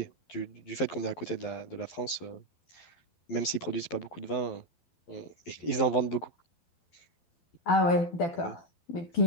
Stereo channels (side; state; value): right; late; 11 ms